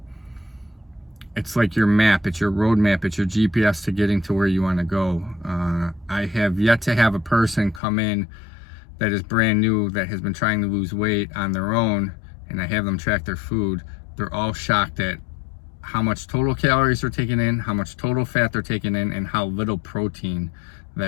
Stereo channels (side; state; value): right; drops out; at 7.8 s